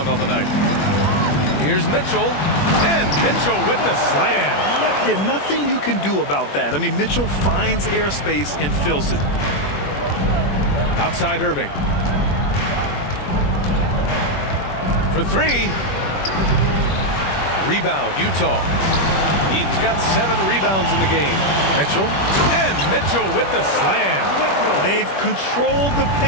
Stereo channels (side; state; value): right; late; 21 ms